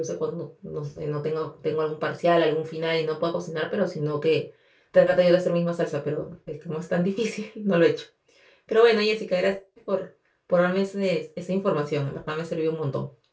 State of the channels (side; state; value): both; identical; correlation 1.00